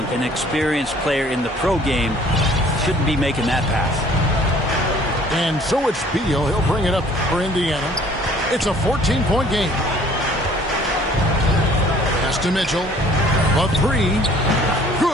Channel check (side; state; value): both; normal; correlation 0.55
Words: An experienced player in the pro game shouldn't be making that pass. And so it's Beal. He'll bring it up for Indiana. It's a 14-point game. Pass to Mitchell. A three.